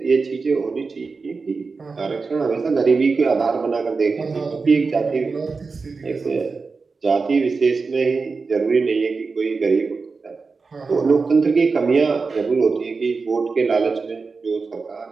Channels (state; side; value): quieter; left; 4.5 dB